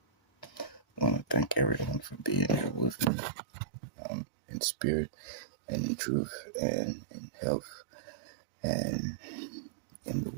I want to thank everyone for being here with me, in spirit and in truth and in health and in the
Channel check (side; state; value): left; drops out; at 3.1 s